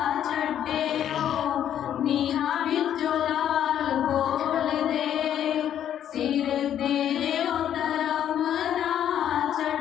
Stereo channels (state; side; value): quieter; right; 10.2 dB